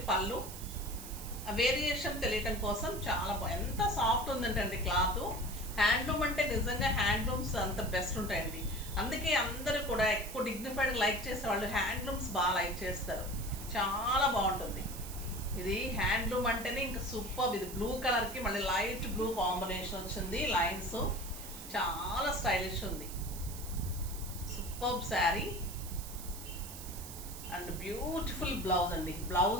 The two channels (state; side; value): noise; right; hiss, 12 dB below the sound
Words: పళ్ళు. ఆ వేరియేషన్ తెలియటం కోసం చాలా ఎంత సాఫ్ట్ ఉందంటే అండి క్లాత్. హ్యాండ్లూమ్ అంటే నిజంగా హ్యాండ్లూమ్స్ అంత బెస్ట్ ఉంటాయండి. అందుకే అందరూ కూడా ఎక్కువ డిగ్నిఫైడ్ లైక్ చేసే వాళ్ళు హ్యాండ్లూమ్స్ బాగా లైక్ చేస్తారు. చాలా బాగుంటుంది ఇది. హ్యాండ్లూమ్ అంటేనే ఇంకా సూపర్. ఇది బ్లూ కలర్కి మళ్ళీ లైట్ బ్లూ కాంబినేషన్ వచ్చింది, లైన్స్ చాలా స్టైలిష్ ఉంది. Super sari and beautiful blouse అండి.